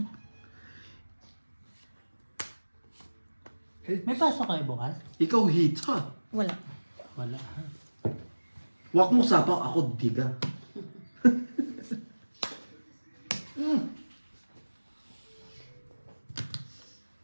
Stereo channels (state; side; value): inverted; both; correlation -1.00